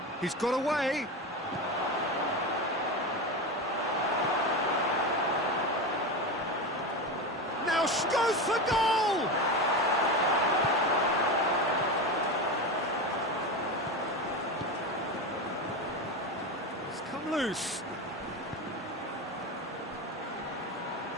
He's got away. Now goes for goal! It's come loose.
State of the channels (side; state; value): both; normal; correlation 0.20